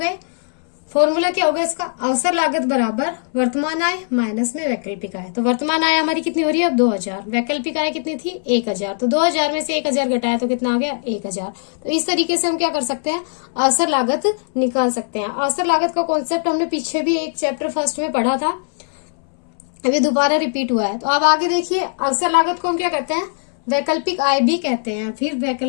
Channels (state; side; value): silent; right; 66 dB below the other